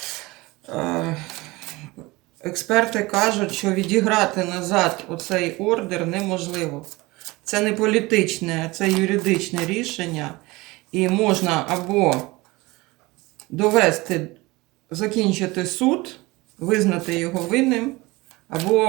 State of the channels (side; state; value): left; quieter; 22.1 dB